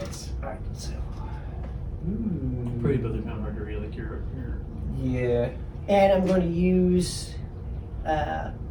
Alright, so. Pretty, but they're kind of hard to read. Like you're Yeah. And I'm going to use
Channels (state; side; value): identical; both; correlation 1.00